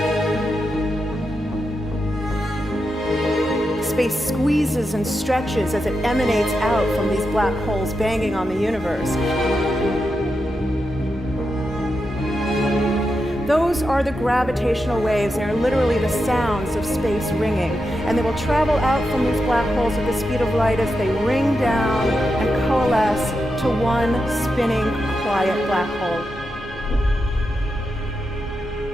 Space squeezes and stretches as it emanates out from these black holes banging on the universe. Those are the gravitational waves. They are literally the sounds of space ringing. And they will travel out from these black holes at the speed of light as they ring down and coalesce to one spinning, quiet black hole.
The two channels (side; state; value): both; normal; correlation 0.87